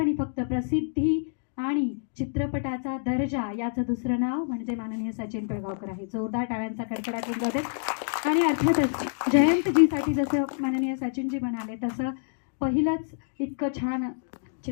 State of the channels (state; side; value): silent; right; digital silence